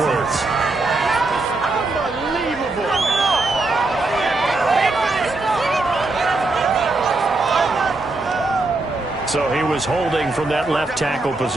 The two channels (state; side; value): quieter; left; 3.2 dB